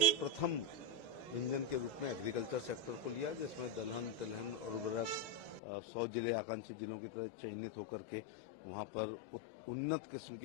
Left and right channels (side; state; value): right; drops out; at 5.6 s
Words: प्रथम इंजन के रूप में एग्रीकल्चर सेक्टर को लिया, जिसमें दलहन, तिलहन और उर्वरक 100 जिले आकांक्षी जिलों की तरह चयनित होकर के वहां पर उन्नत किस्म